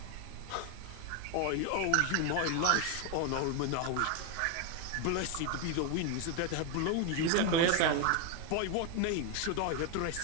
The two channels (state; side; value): different; both; correlation 0.01